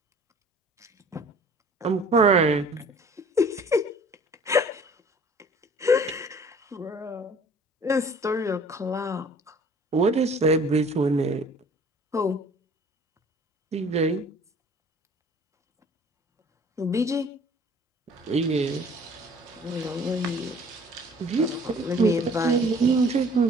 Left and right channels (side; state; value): both; normal; correlation 0.51